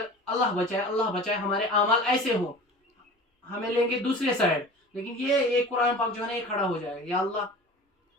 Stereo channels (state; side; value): normal; both; correlation 0.38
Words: اللہ بچائے ہمارے اعمال ایسے ہوں، ہمیں لیں گے دوسرے سائڈ، لیکن یہ قرآن پاک جو ہے نا یہ کھڑا ہو جائے گا، یا